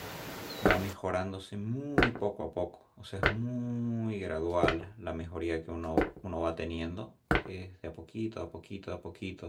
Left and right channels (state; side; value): identical; both; correlation 1.00